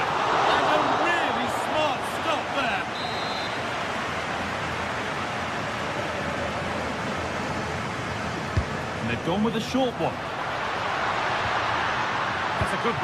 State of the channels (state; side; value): identical; both; correlation 1.00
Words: And a really smart stop there. And they've gone with a short one. That's a good